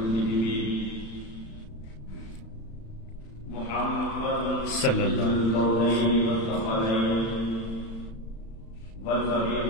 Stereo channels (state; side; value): late; right; 35 ms